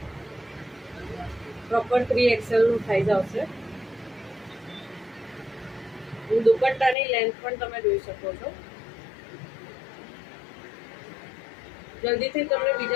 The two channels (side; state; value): right; drops out; at 7.0 s